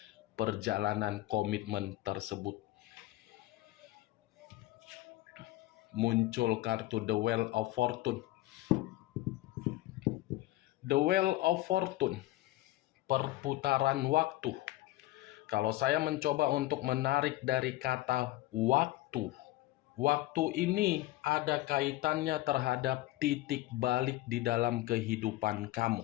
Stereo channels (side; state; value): right; quieter; 17.0 dB